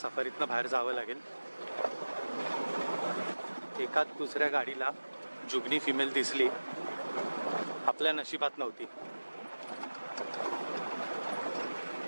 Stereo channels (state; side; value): inverted; both; correlation -1.00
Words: सफारीतनं बाहेर जावं लागेल. एकाच दुसऱ्या गाडीला जुगनी फिमेल दिसली, आपल्या नशिबात नव्हती.